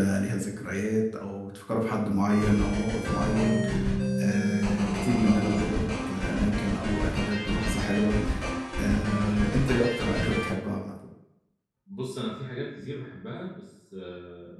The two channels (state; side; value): identical; both; correlation 1.00